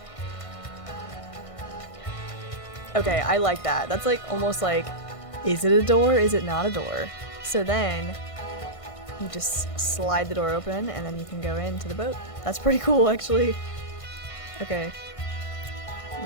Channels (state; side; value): late; right; 1.5 ms